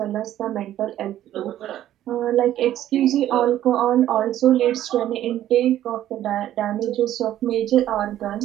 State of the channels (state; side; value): quieter; left; 12.5 dB